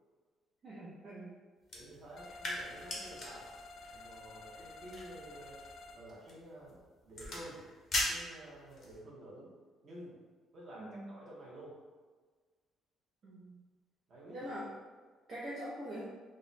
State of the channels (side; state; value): both; normal; correlation 0.71